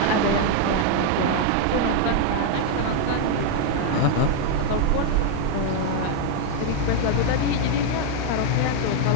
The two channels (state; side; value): different; both; correlation 0.00